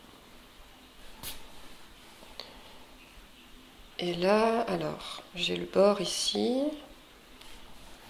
Et là, alors, j'ai le bord ici.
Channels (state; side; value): identical; both; correlation 1.00